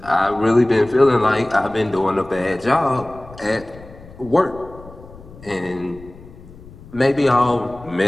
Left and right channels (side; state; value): left; noise; rumble, 19 dB below the sound